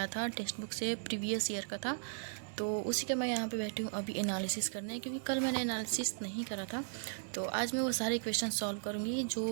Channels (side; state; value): left; silent; digital silence